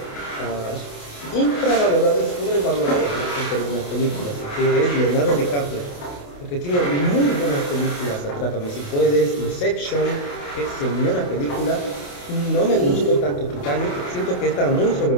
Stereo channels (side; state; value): right; late; 28 ms